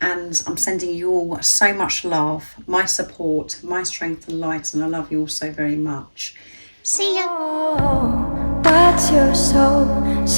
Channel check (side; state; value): both; inverted; correlation -1.00